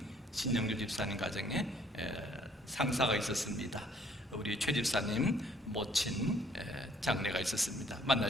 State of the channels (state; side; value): normal; both; correlation 0.62